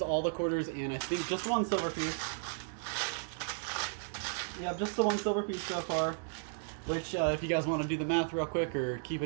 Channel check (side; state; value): left; silent; 55 dB below the other